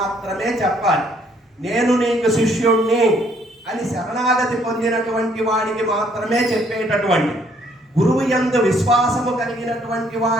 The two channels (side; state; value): both; normal; correlation 0.65